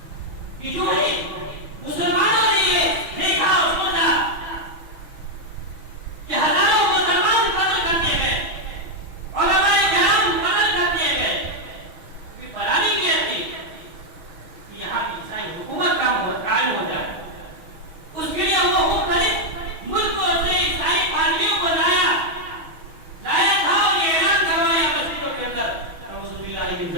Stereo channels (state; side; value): late; left; 6.4 ms